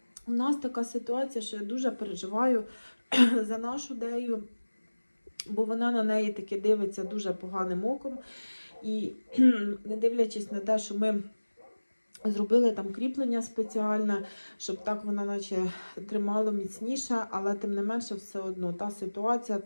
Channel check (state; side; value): inverted; both; correlation -1.00